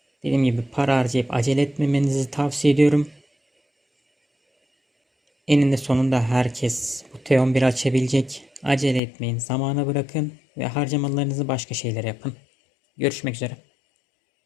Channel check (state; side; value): drops out; right; at 9.0 s